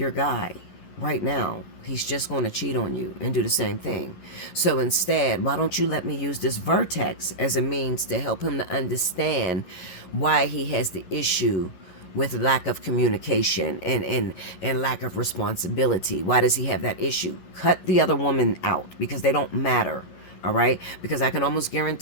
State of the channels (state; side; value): late; right; 11 ms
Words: guy right now, he's just going to cheat on you and do the same thing. So instead, why don't you let me use this vertex as a means to help him to understand why he has the issue with lack of communication and lack of responsibility. Why does he have that issue? Cut the other woman out, because they don't matter. All right? Because I can almost